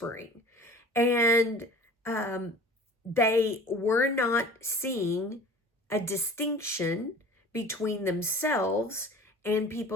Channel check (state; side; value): normal; both; correlation 0.43